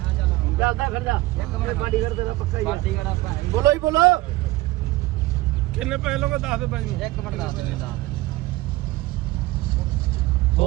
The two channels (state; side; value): quieter; left; 19.0 dB